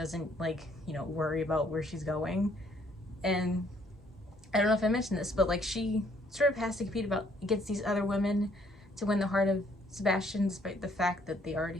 like, you know, worry about where she's going. And I don't know if I mentioned this, but like she sort of has to compete against these other women to win the heart of Sebastian, despite the fact that they already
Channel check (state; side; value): normal; both; correlation 0.65